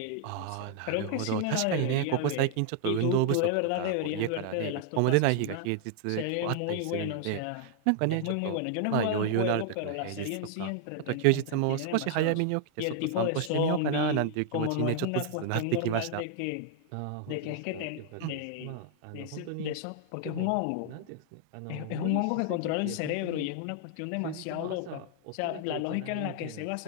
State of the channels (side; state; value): both; different; correlation 0.00